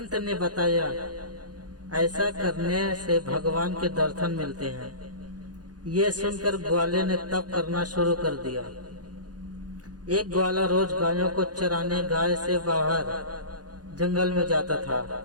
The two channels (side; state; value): left; late; 0.69 ms